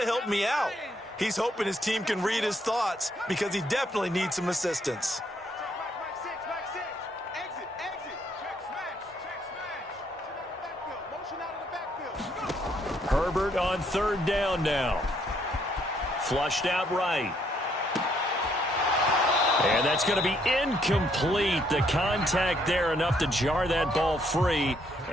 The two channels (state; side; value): normal; both; correlation 0.70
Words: help me out. He's hoping his team can read his thoughts because he definitely needs some assistance. Herbert on 3rd down now. Flushed out right. And that's going to be incomplete. The contact there enough to jar that ball free.